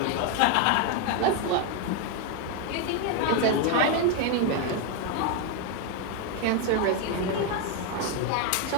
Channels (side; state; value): both; different; correlation 0.01